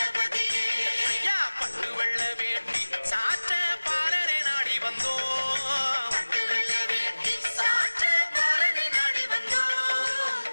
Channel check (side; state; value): both; inverted; correlation -1.00